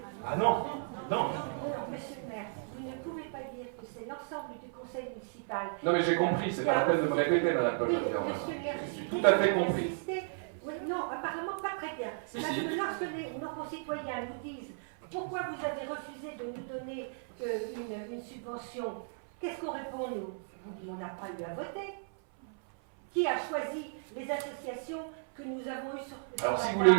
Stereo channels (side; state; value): left; silent; 55 dB below the other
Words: Ah non, non. Monsieur le maire, vous ne pouvez pas dire que c'est l'ensemble du conseil municipal. Non mais j'ai compris, c'est pas la peine de me répéter, madame Paul. Oui, monsieur le maire, je suis tout à fait compris. Oui, non, apparemment pas très bien. Si, Parce si. que lorsque nos concitoyens nous disent pourquoi vous avez refusé de nous donner une subvention, qu'est-ce qu'on répond nous? Vous dites on n'a pas eu à voter. Qui a choisi les associations que nous avons eues sur Alors si vous